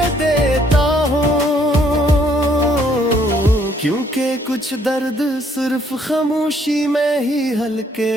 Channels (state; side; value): normal; both; correlation 0.66